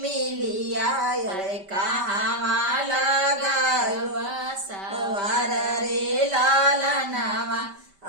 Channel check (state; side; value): late; left; 5.1 ms